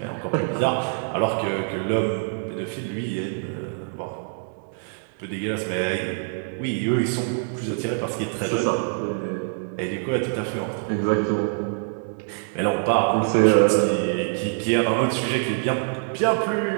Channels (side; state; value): left; silent; digital silence